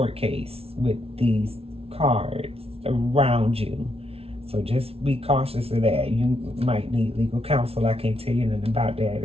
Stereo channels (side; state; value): left; late; 0.29 ms